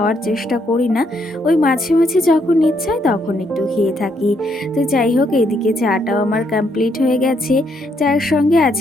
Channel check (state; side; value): normal; both; correlation 0.74